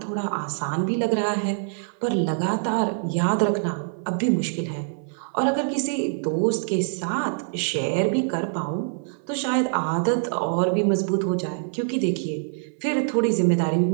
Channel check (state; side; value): silent; left; 62 dB below the other